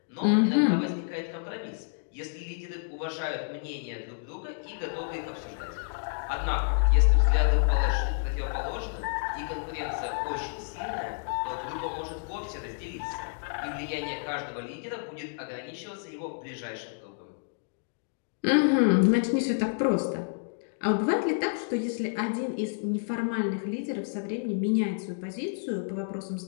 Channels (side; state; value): right; silent; digital silence